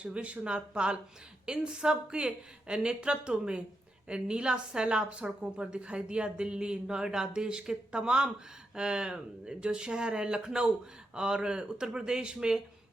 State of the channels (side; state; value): both; normal; correlation 0.85